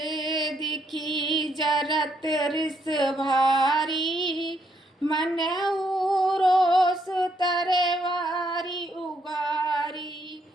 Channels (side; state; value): both; normal; correlation 0.74